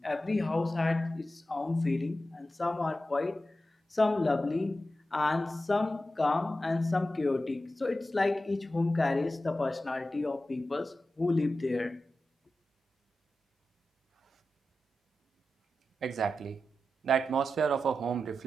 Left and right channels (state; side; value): normal; both; correlation 0.92